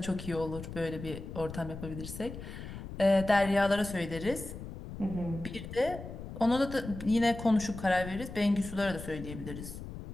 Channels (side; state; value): left; noise; rumble, 10 dB below the sound